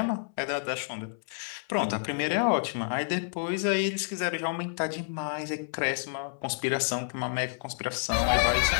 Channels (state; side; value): silent; right; 58 dB below the other